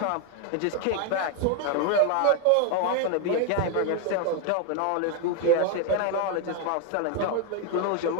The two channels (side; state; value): both; different; correlation 0.01